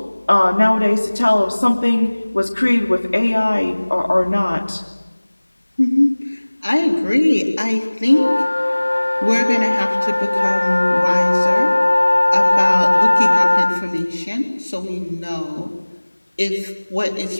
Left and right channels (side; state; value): both; inverted; correlation -1.00